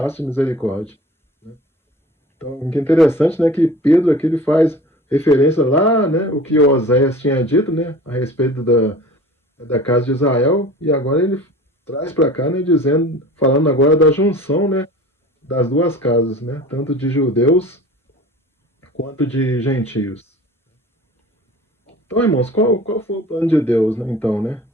misericórdia. Então, o que é interessante, né, que Pedro aqui ele faz referência lá, né, o que Oséias tinha dito, né, a respeito da casa de Israel, e agora ele traz para cá, né, falando agora da junção, né, das duas casas, né, tanto de judeus quanto de gentios. Então, irmãos, qual foi o plano de Deus, né, então, né,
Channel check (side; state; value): both; normal; correlation 0.42